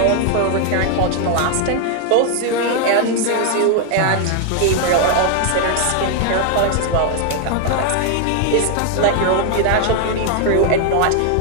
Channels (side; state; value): both; different; correlation 0.00